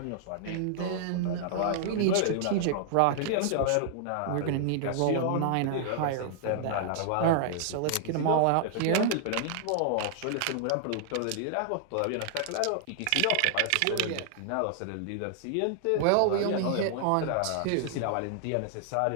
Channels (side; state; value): both; different; correlation -0.01